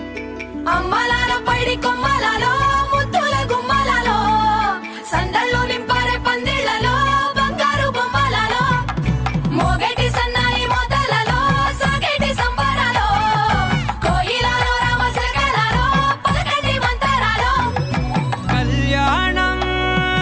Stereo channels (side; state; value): both; identical; correlation 1.00